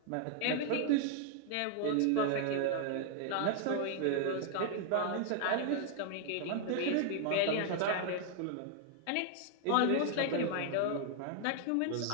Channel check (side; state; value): both; different; correlation 0.00